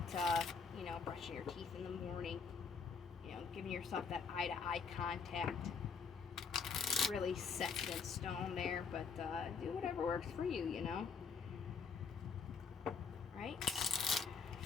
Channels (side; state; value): right; quieter; 5.7 dB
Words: brushing your teeth in the morning, giving yourself that eye-to-eye contact. Really set in stone there, but do whatever works for you, Right?